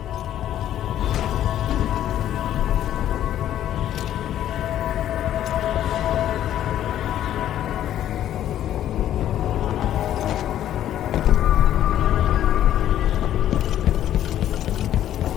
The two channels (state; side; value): quieter; right; 11.6 dB